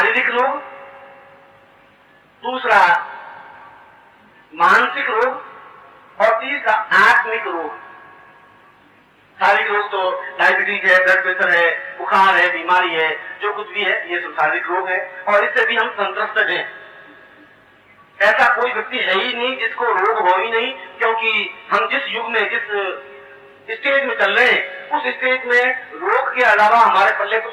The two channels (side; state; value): both; identical; correlation 1.00